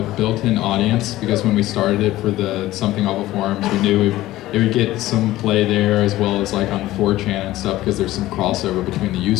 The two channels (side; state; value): right; quieter; 16.1 dB